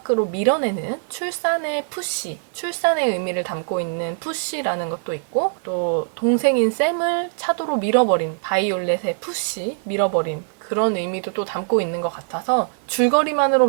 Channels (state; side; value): silent; left; digital silence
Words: 밀어내는 출산의 의미를 담고 있는 푸시라는 것도 있고 또 동생인 샘을 차도로 밀어버린 바이올렛의 밀어버린 그런 의미도 또 담고 있는 것 같아서 줄거리만으로